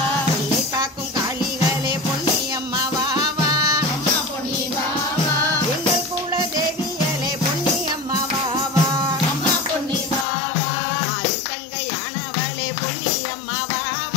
என்னை காக்கும் காளிகளே பொன்னியம்மா வா வா அம்மா பொன்னி வா வா. எங்கள் குல தேவியலே பொன்னியம்மா வா வா அம்மா பொன்னி வா வா. தங்கையானவளே பொன்னியம்மா வா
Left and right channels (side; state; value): right; drops out; at 10.2 s